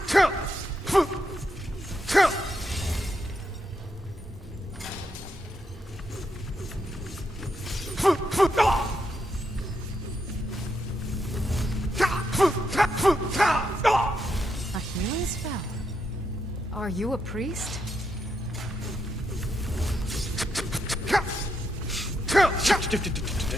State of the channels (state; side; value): normal; both; correlation 0.81